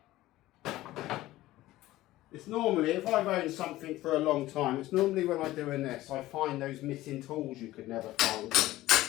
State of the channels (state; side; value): quieter; right; 16.4 dB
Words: It's normally, if I've owned something for a long time, it's normally when I'm doing this, I find those missing tools you could never find.